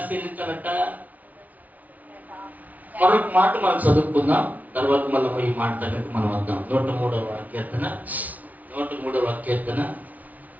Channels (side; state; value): left; late; 0.074 ms